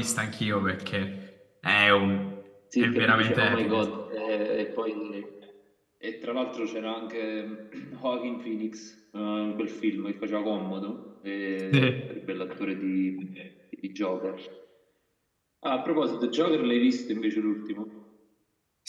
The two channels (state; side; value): identical; both; correlation 1.00